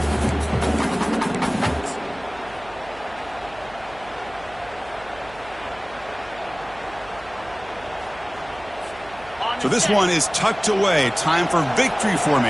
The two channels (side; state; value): right; noise; hum, 21 dB below the sound